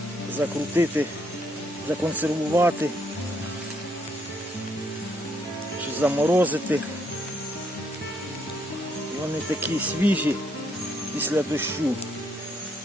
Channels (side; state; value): both; normal; correlation 0.73